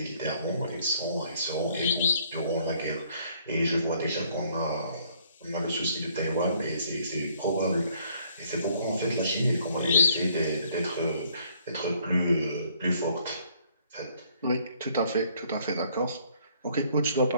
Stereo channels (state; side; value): inverted; both; correlation -0.64